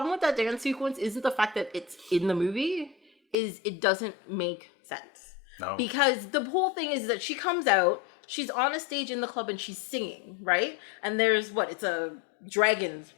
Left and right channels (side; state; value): right; drops out; at 3.4 s